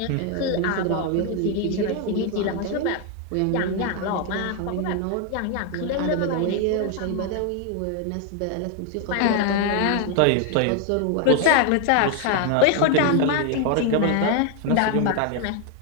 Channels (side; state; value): both; different; correlation 0.01